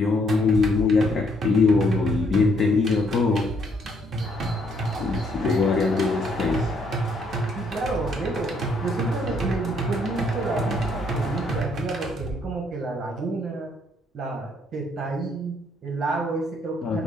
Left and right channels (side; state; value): both; normal; correlation 0.69